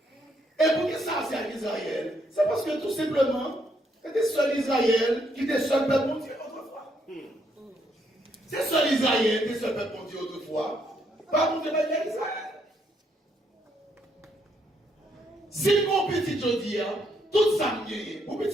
Et pour qui ça c'est à Israël? C'est parce que tout simplement, c'était seul Israël qui était seul peuple mon Dieu autrefois. C'est seul Israël qui était seul peuple mon Dieu autrefois. Pas pour Israël. Si mon petit Jodi, tout ça me guérit. Mon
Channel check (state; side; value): normal; both; correlation 0.74